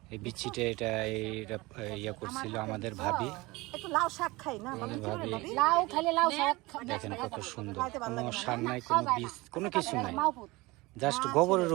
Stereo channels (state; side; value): quieter; left; 22.3 dB